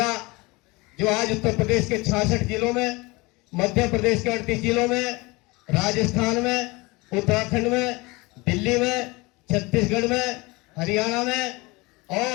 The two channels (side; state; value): right; quieter; 24.3 dB